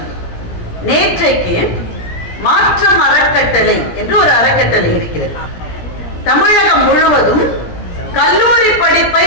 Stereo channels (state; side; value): late; right; 17 ms